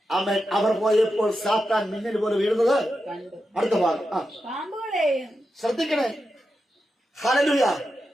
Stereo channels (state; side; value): normal; both; correlation 0.89